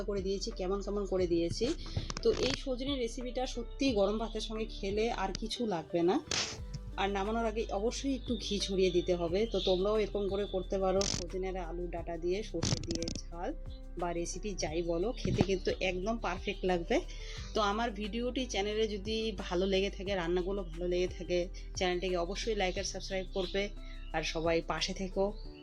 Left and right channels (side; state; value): both; identical; correlation 1.00